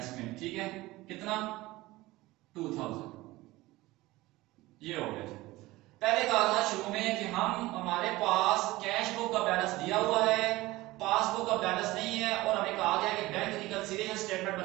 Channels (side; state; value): left; quieter; 19.1 dB